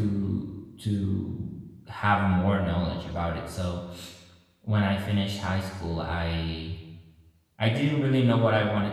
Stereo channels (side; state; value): both; identical; correlation 1.00